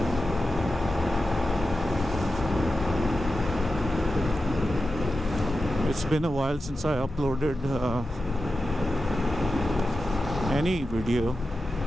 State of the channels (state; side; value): normal; both; correlation 0.91